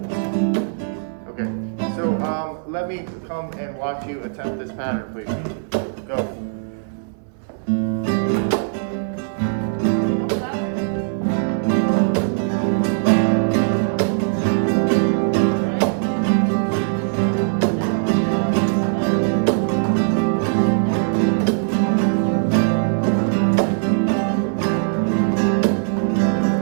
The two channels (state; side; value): silent; left; 60 dB below the other